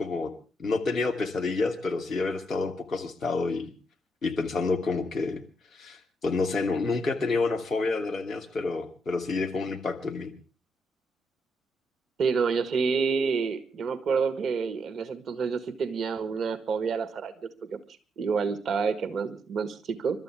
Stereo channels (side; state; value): both; normal; correlation 0.78